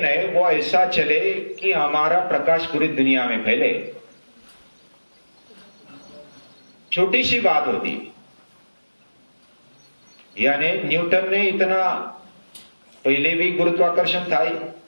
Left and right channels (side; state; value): both; inverted; correlation -1.00